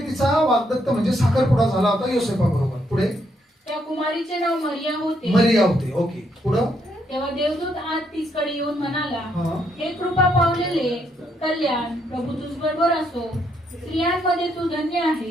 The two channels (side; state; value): both; normal; correlation 0.74